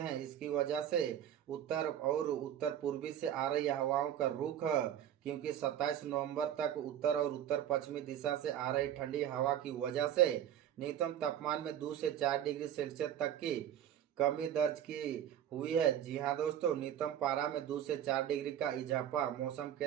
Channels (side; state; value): left; quieter; 10.3 dB